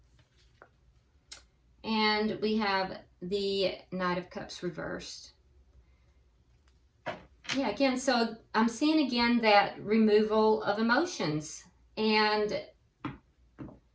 and we have the Knight of Cups reversed. Yeah, again, so I'm seeing again that removal of emotions. And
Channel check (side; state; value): both; identical; correlation 1.00